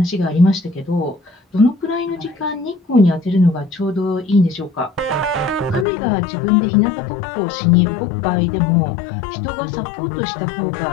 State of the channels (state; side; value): drops out; right; at 5.9 s